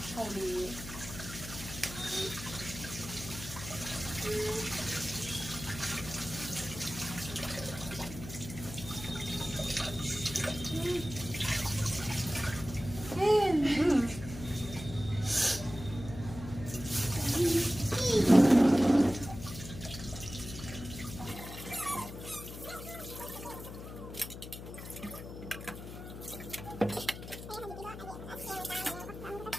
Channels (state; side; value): noise; left; hum, 11 dB below the sound